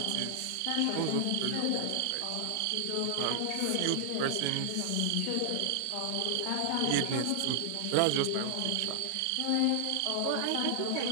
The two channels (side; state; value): both; different; correlation -0.01